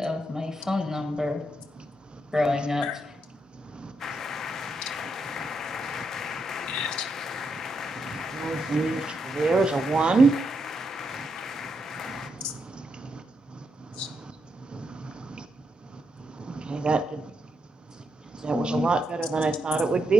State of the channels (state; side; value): normal; both; correlation 0.81